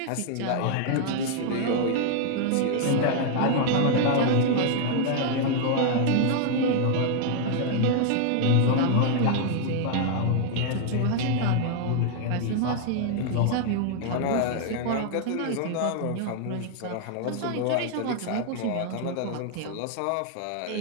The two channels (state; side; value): different; both; correlation 0.00